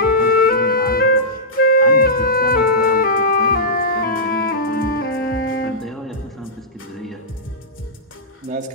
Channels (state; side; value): normal; both; correlation -0.14